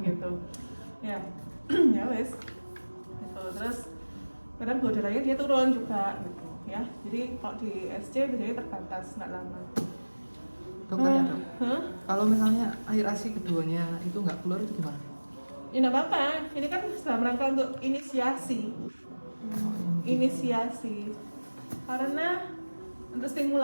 gitu. Ya. Ya wes. Gitu. Terus kadang gula darahnya dia turun juga gitu ya. Jadi kalau di SC biasanya terbatas, nggak lama. Dokternya dok, kalau misalnya air ASI keduanya itu nggak keluar itu gimana? Ya nggak apa-apa, ini kan dalam rangka untuk inisiasi. Inisiasi karena untuk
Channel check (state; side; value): inverted; both; correlation -1.00